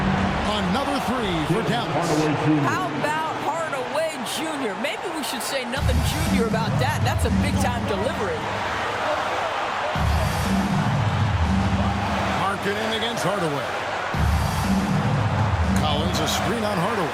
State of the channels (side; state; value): both; identical; correlation 1.00